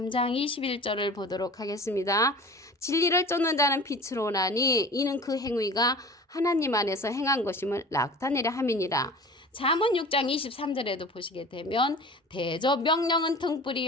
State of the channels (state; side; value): normal; both; correlation 0.40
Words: 21절을 보도록 하겠습니다. 진리를 쫓는 자는 빛으로 오나니 이는 그 행위가 하나님 안에서 행한 것임을 나타내려 함이니라. 잠언 6장 23절에도 보시게 되면 대저 명령은